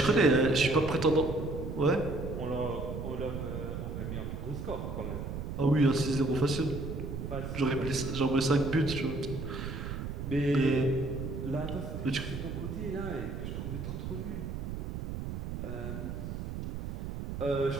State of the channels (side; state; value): right; noise; rumble, 5 dB below the sound